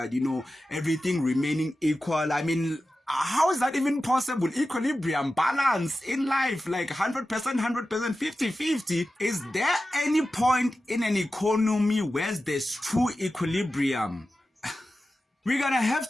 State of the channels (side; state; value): both; normal; correlation 0.93